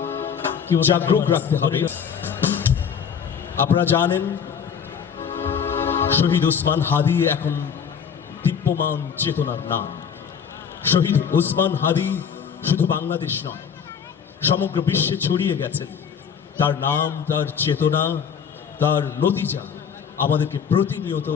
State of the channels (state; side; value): quieter; right; 7.2 dB